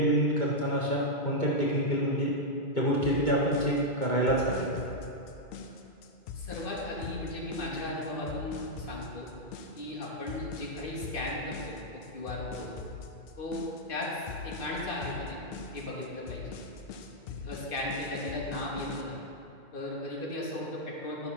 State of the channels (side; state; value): right; late; 2.6 ms